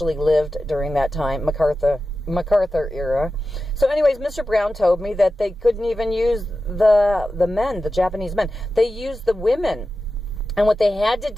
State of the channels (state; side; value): normal; both; correlation 0.93